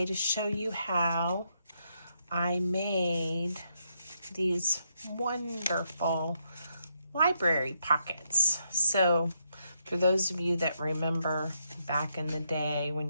to show you how I made these wonderful library pockets. So for those of you that remember back in the day when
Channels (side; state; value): both; inverted; correlation -0.78